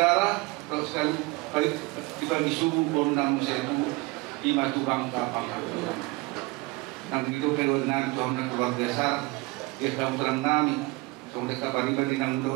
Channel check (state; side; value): quieter; left; 24.8 dB